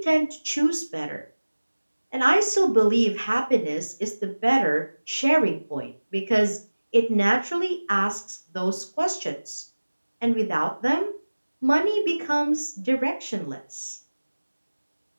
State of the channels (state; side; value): inverted; both; correlation -1.00